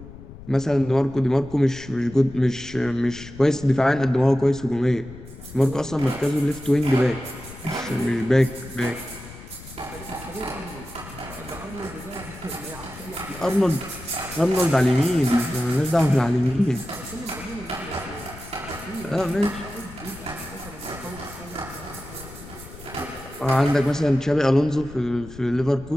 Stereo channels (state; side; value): noise; left; rumble, 16 dB below the sound